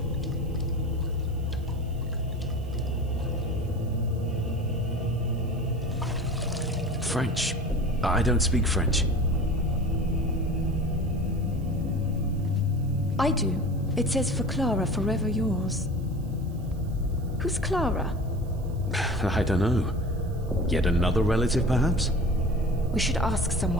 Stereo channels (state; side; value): noise; right; hiss, 28 dB below the sound